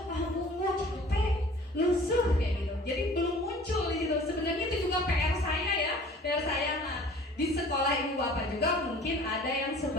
"Tunggu, capek, lusuh," kayak gitu. Jadi belum muncul gitu. Sebenarnya itu juga PR saya ya. PR saya di sekolah ibu bapak juga mungkin ada yang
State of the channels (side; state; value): both; normal; correlation 0.48